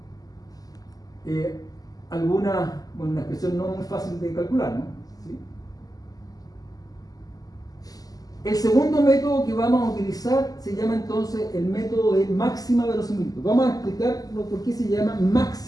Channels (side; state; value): right; late; 0.18 ms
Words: una expresión no muy fácil de calcular, ¿no? ¿Sí? El segundo método que vamos a utilizar se llama entonces el método de máxima verosimilitud. Vamos a explicar por qué se llama